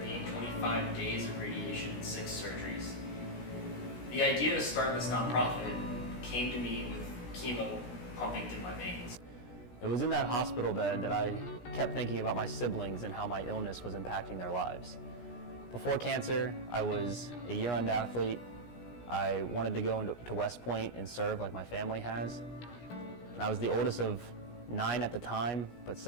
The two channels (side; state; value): right; late; 17 ms